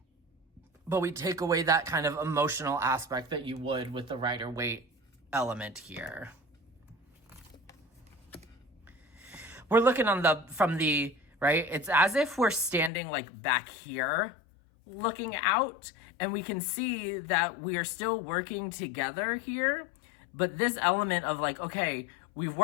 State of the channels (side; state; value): right; drops out; at 12.9 s